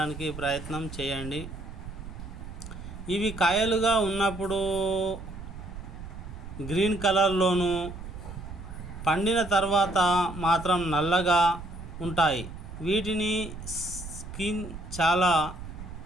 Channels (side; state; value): right; noise; rumble, 11 dB below the sound